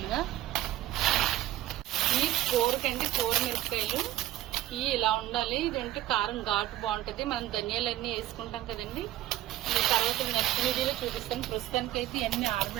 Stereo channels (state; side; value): quieter; left; 14.8 dB